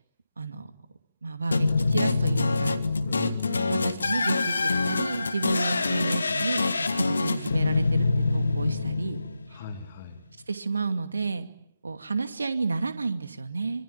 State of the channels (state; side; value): inverted; both; correlation -0.89